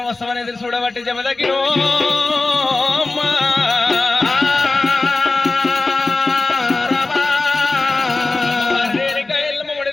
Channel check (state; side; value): quieter; right; 3.4 dB